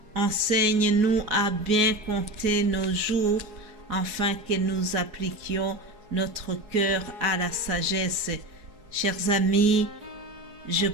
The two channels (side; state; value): left; late; 4.7 ms